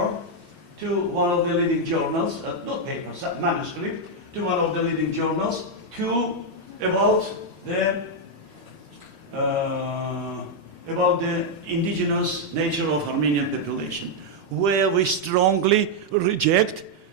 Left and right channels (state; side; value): late; left; 5.0 ms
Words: to one of the leading journals, not paper, manuscript, to one of the leading journals about the indigenous nature of Armenian population, where we strongly reject